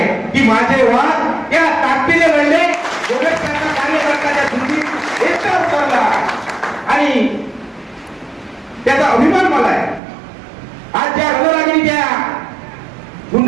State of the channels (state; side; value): drops out; left; at 10.0 s